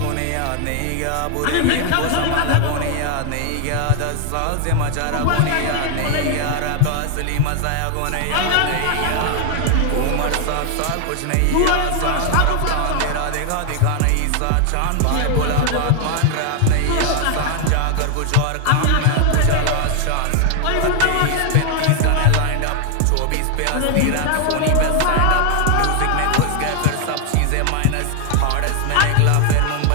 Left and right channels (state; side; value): different; both; correlation 0.00